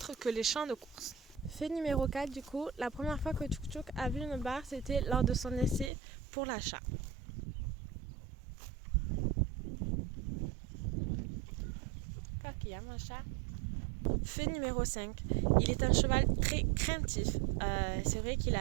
que les champs de course. Fait numéro 4, du coup, la première fois que Tchouk Tchouk a vu une barre, c'était lors de son essai pour l'achat. Qu'il y a mon chat. Fait numéro 5, il est un cheval très craintif. C'est vrai qu'il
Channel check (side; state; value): left; drops out; at 5.9 s